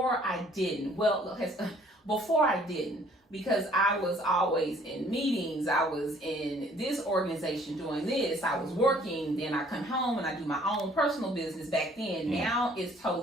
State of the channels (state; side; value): normal; both; correlation 0.58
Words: I didn't. Before I didn't, because I was always in meetings. I was in this organization doing this. I was working. Then I come home and I do my own personal business back then. Now it's